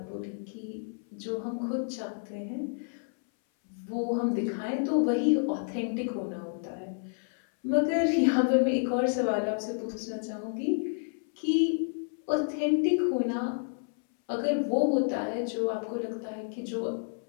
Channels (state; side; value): silent; right; 58 dB below the other